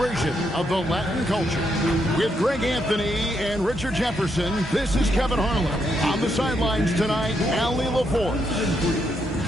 of the Latin culture. With Greg Anthony and Richard Jefferson, this is Kevin Harlan. On the sidelines tonight, Allie LaForce.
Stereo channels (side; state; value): both; normal; correlation 0.78